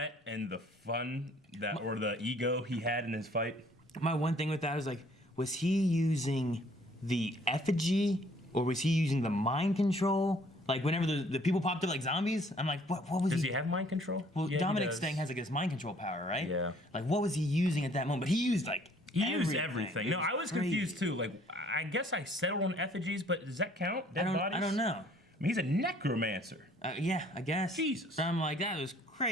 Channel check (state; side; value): normal; both; correlation 0.59